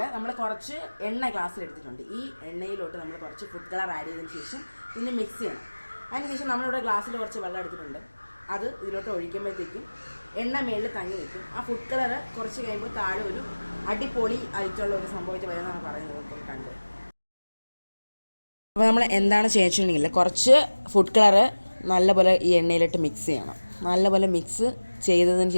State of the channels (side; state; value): both; inverted; correlation -1.00